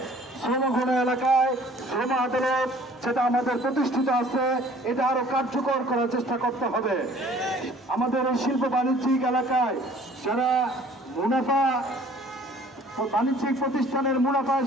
শ্রমঘন এলাকায় শ্রম আদালত যেটা আমাদের প্রতিষ্ঠিত আছে এটা আরো কার্যকর করার চেষ্টা করতে হবে। আমাদের এই শিল্প বাণিজ্যিক এলাকায় যারা মুনাফা বাণিজ্যিক প্রতিষ্ঠানের মুনাফায়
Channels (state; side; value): normal; both; correlation 0.53